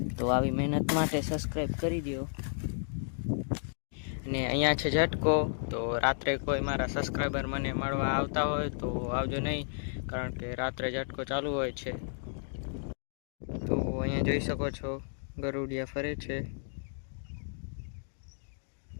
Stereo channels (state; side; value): silent; right; digital silence